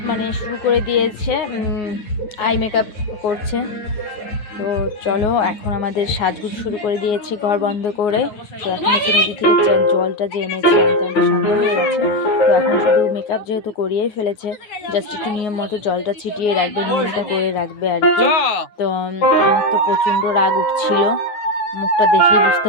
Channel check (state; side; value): late; right; 9.6 ms